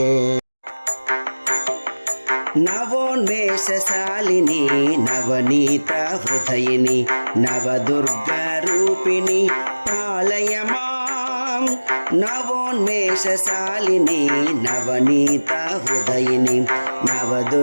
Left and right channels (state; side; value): inverted; both; correlation -1.00